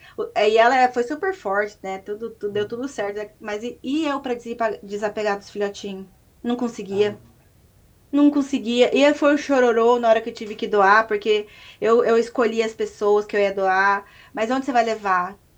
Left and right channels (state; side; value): identical; both; correlation 1.00